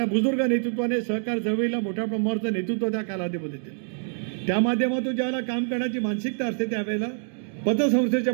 बुजुर्ग नेतृत्वाने सहकार चळवळीला मोठ्या प्रमाणाचं नेतृत्व त्या कालावधीमध्ये दिलं. त्या माध्यमातून ज्यावेळेला काम करण्याची मानसिकता असते त्यावेळेला पतसंस्थेच्या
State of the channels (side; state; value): left; silent; digital silence